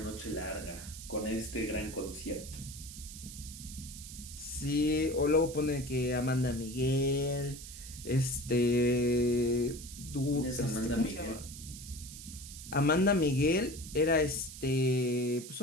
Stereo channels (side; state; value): right; noise; hiss, 13 dB below the sound